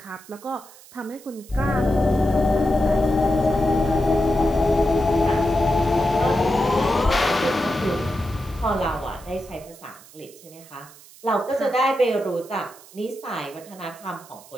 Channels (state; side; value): noise; right; hiss, 22 dB below the sound